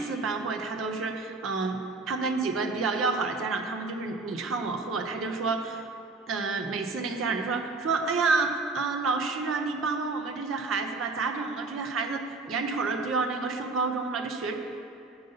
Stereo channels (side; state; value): left; quieter; 3.7 dB